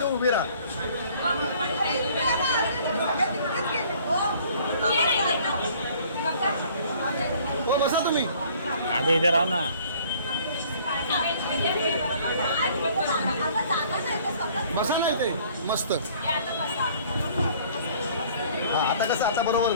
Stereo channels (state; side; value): inverted; both; correlation -0.56